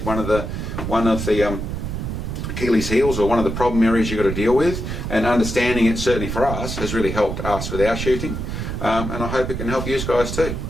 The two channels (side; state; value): right; noise; rumble, 4 dB below the sound